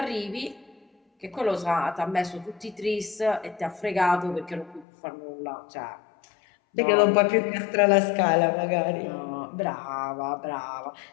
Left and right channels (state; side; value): drops out; right; at 4.9 s